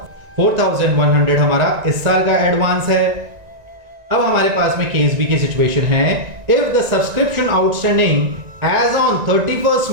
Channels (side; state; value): left; late; 1.9 ms